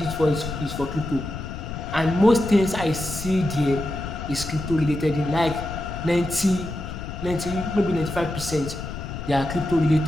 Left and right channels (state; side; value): noise; left; rumble, 8 dB below the sound